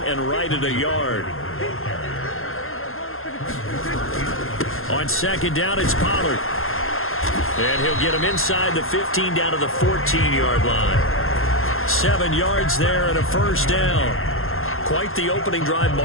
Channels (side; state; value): right; late; 0.61 ms